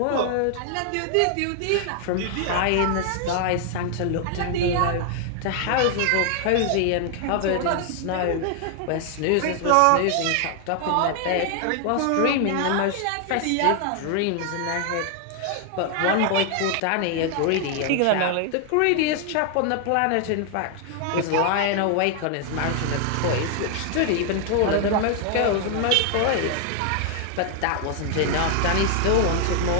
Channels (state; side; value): different; both; correlation 0.00